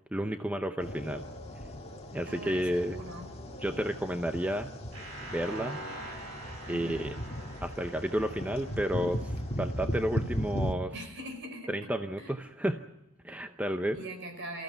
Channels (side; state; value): both; normal; correlation 0.82